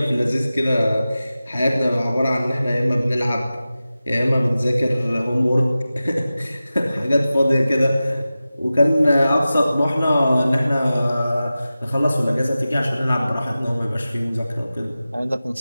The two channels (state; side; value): inverted; both; correlation -0.95